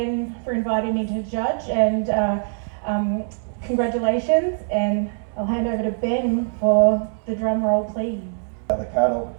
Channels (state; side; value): silent; left; digital silence